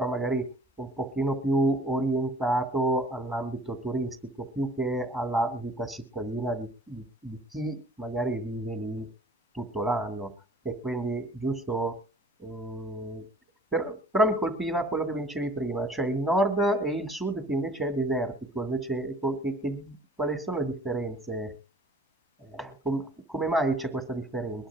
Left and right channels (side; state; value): both; normal; correlation 0.53